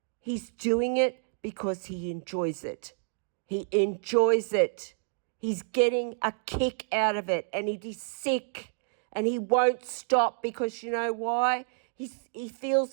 he's doing it because he enjoys it. He enjoys it. He's getting a kick out of it, and he's sick and he won't stop because you know why? He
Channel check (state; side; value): silent; left; digital silence